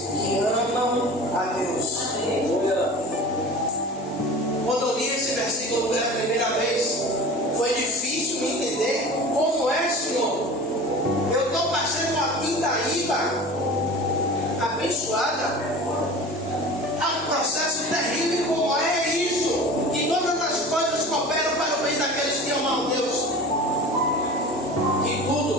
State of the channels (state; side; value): normal; both; correlation 0.37